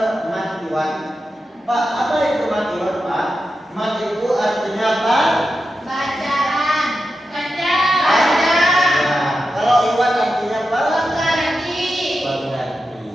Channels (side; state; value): both; normal; correlation 0.90